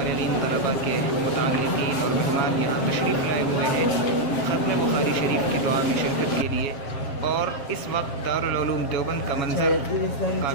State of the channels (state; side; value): late; right; 7.1 ms